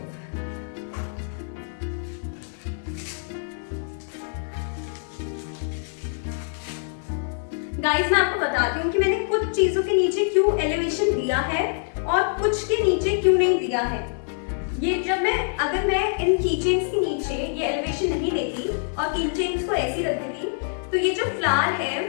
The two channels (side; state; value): right; silent; 62 dB below the other